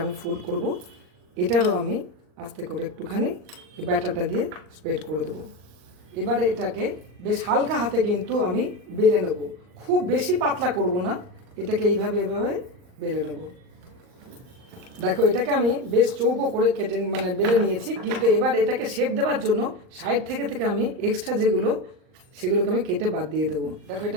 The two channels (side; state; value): left; late; 39 ms